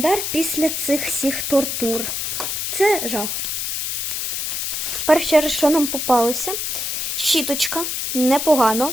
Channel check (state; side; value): noise; left; hiss, 2 dB below the sound